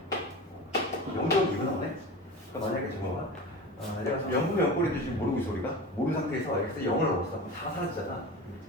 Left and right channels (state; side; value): normal; both; correlation 0.31